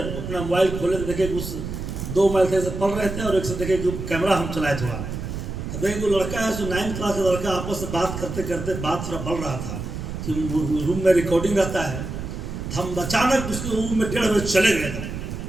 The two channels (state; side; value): noise; right; rumble, 6 dB below the sound